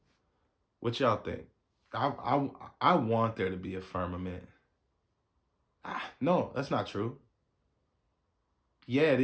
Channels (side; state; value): both; identical; correlation 1.00